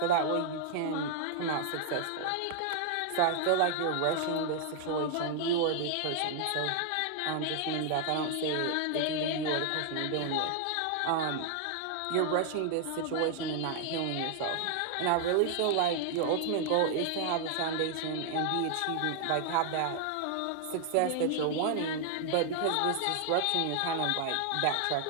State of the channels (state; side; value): different; both; correlation 0.00